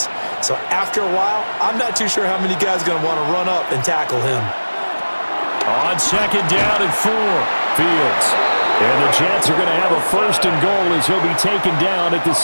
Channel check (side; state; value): both; inverted; correlation -1.00